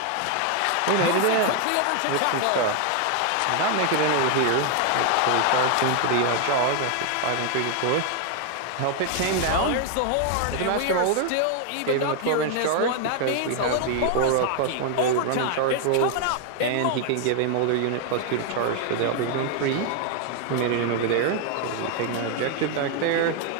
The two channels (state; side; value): different; both; correlation 0.00